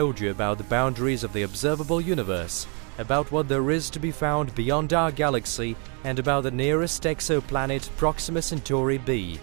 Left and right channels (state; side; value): quieter; left; 38.2 dB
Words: you about the boundaries of the observable universe, about what there is to be found beyond our galaxy, and about the nearest exoplanet Proxima Centauri b.